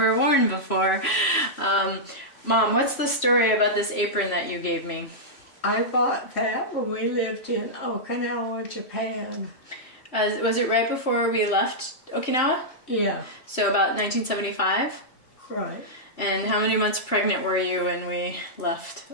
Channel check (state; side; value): late; right; 3.1 ms